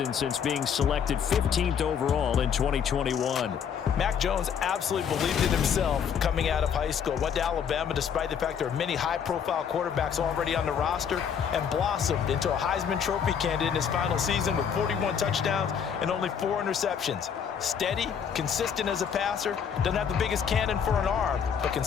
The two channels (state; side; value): quieter; right; 7.5 dB